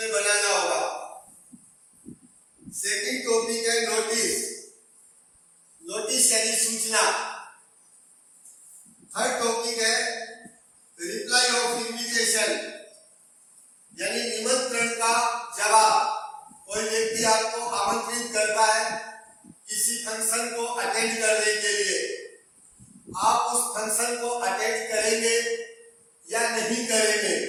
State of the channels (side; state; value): both; identical; correlation 1.00